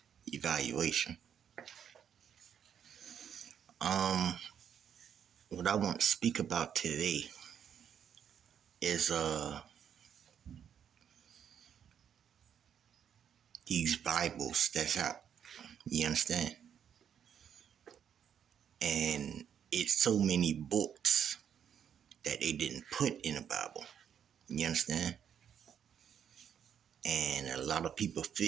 evaluation. Um, what I want to speak about today is these Bibles that's out. You understand? And it's so many books that they didn't put in the Bible. You understand? And a lot of people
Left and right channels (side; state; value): left; quieter; 8.5 dB